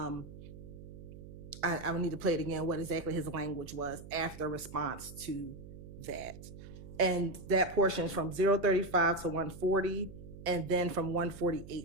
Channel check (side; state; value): right; noise; hum, 14 dB below the sound